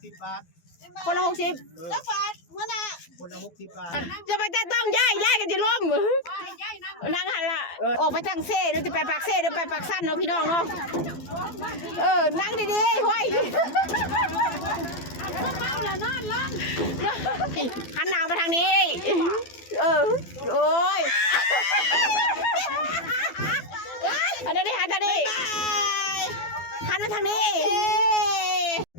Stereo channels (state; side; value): late; right; 12 ms